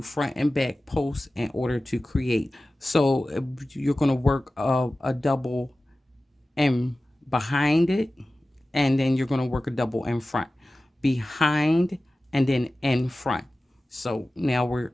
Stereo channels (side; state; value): both; normal; correlation 0.96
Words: front and back posts in order to create. So you're going to work a double in behind it, and then you're going to work a double in front, behind, and then in front. So now we're